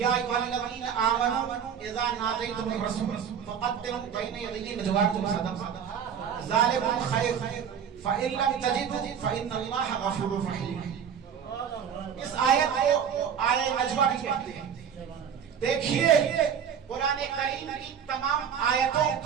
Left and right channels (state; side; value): quieter; left; 8.0 dB